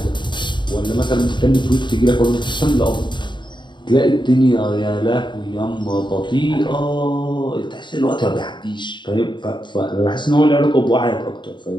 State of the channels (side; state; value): right; late; 0.22 ms